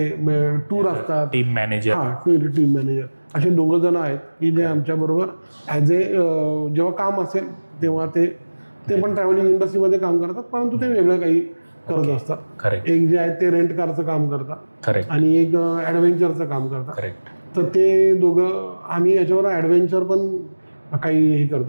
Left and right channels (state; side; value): inverted; both; correlation -1.00